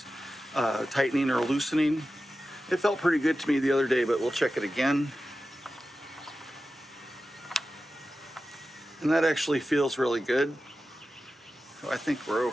tightening or loosening. It felt pretty good to me the other day, but we'll check it again. And that actually feels really good. So I think we're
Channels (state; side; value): normal; both; correlation 0.93